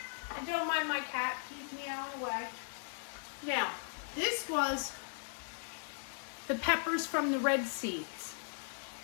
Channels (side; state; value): right; silent; digital silence